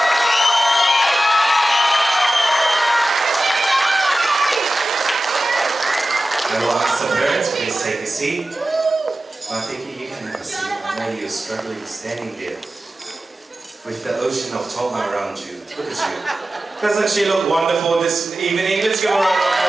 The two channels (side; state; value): both; normal; correlation 0.95